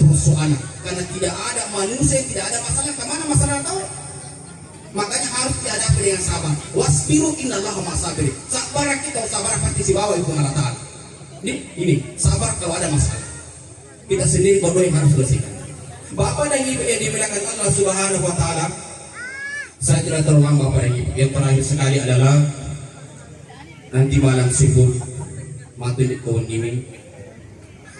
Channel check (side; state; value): both; identical; correlation 1.00